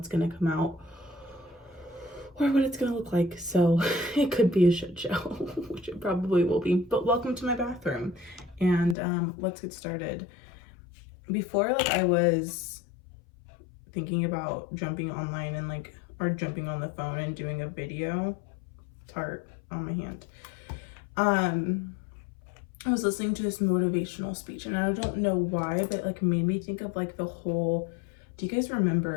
gonna come out or what it's gonna look like, so it could be a shit show, which it probably will be. But welcome to my bathroom, and let's get started. Before, I was thinking about jumping online and or jumping on the phone and doing a video. Tart on my hand. I was listening to this motivational speech, and I don't know why, but it made me think of the whole, do you guys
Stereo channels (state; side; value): drops out; right; at 9.0 s